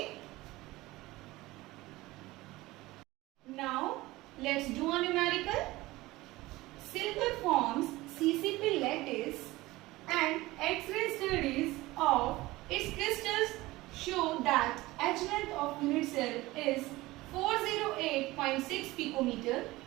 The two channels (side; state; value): left; quieter; 19.3 dB